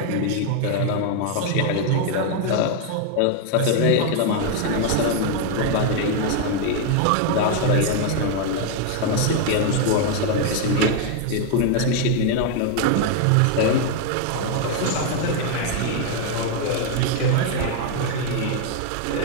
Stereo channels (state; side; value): different; both; correlation 0.00